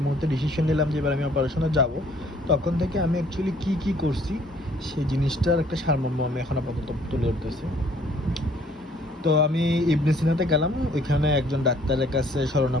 মুহূর্তে ডিসিশন নিলাম যে এবার আমি অপারেশনে যাব, তখন থেকে আমি অ্যাকচুয়ালি কী করছি সেই জিনিসটার একটা সারমর্ম আমি এখন আপাতত তুলে ধরতেছি। তো আমি ইবনে সিনাতে গেলাম, ওইখানে একজন ডাক্তারের কাছে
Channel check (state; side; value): normal; both; correlation 0.60